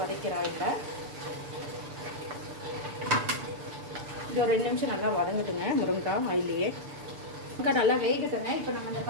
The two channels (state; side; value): late; left; 6.8 ms